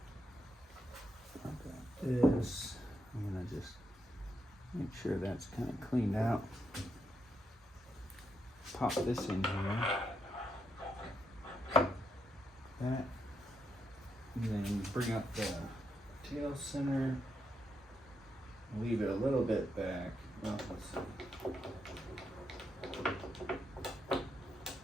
I've got this. I'm gonna just make sure that's kind of cleaned out. Pop this in here. That. And then bring up the tail center. Leave it a little bit back. Well, let's see.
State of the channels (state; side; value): normal; both; correlation 0.81